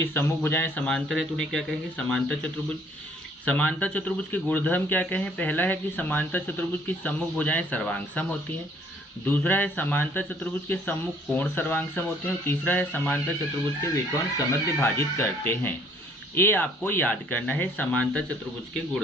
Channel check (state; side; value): normal; both; correlation 0.60